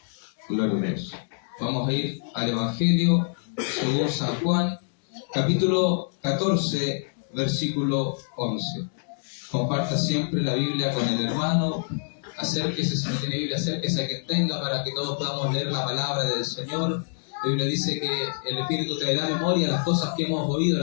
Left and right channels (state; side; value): silent; right; digital silence